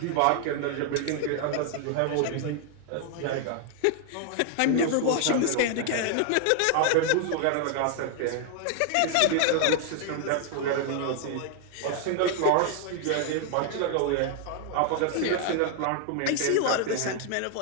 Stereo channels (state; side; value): different; both; correlation 0.00